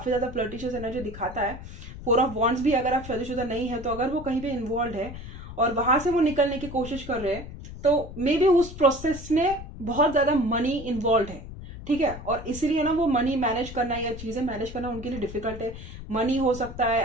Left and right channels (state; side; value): noise; left; rumble, 12 dB below the sound